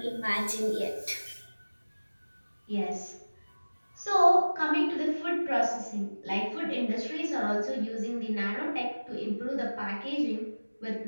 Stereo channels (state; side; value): inverted; both; correlation -1.00